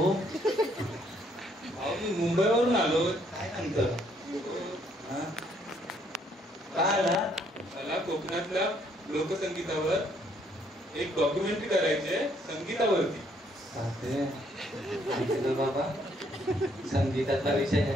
मी मुंबईवरून आलो. काय सांगतं काय आला? मला कोकणातल्या लोकसंगीतावर एक डॉक्युमेंटरी करायची आहे, संगीतावरती. बाबा संगीताचा विषय आहे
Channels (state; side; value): normal; both; correlation 0.68